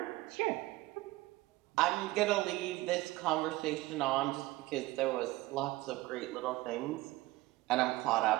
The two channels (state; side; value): quieter; left; 18.9 dB